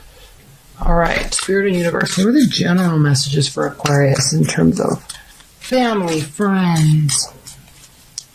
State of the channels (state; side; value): identical; both; correlation 1.00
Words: All right, Spirit and Universe, what are the general messages for Aquarius in terms of family, friends,